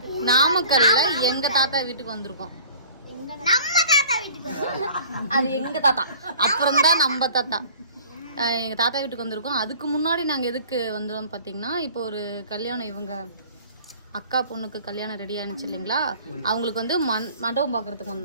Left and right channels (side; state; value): both; inverted; correlation -0.48